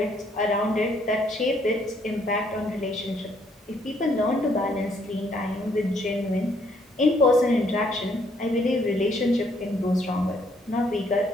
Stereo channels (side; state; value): both; normal; correlation 0.68